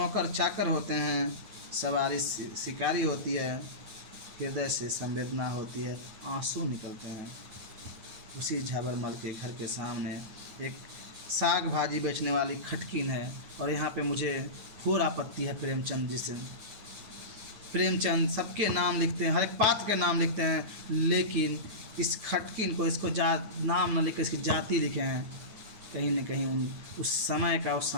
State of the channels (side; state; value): left; late; 9.3 ms